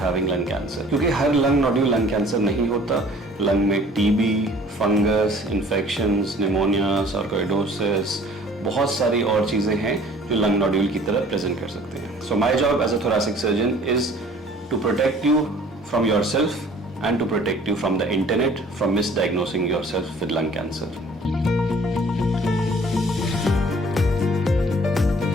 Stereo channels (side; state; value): both; normal; correlation 0.52